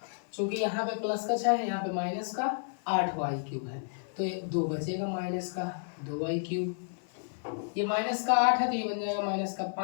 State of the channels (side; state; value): right; silent; 57 dB below the other